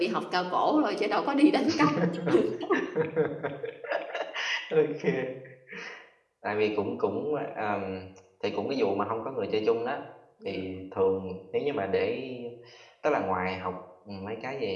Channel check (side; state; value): both; identical; correlation 1.00